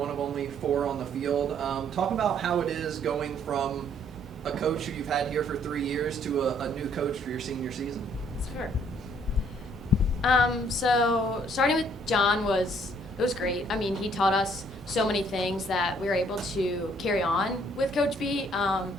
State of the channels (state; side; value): normal; both; correlation 0.64